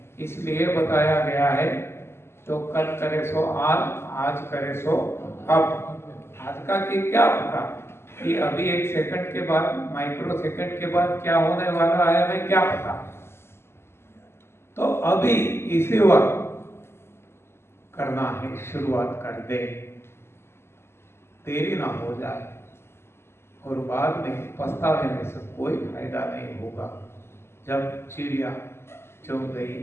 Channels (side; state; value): right; late; 0.12 ms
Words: इसलिए बताया गया है, जो कल करे सो आज, आज करे सो अब। आज का की क्या पता कि अभी एक सेकंड के बाद, माइक्रो सेकंड के बाद क्या होने वाला है, हमें क्या पता। तो अभी इसी वक्त करना है, शुरुआत कर दे, देरी ना हो जाए और बाद में पछतावे में से कोई फायदा नहीं होगा। जब चिड़िया चुग गई